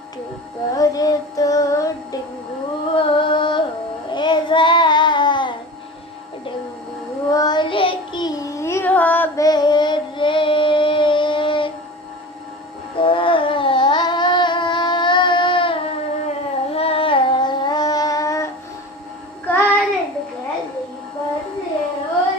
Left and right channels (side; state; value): both; normal; correlation 0.34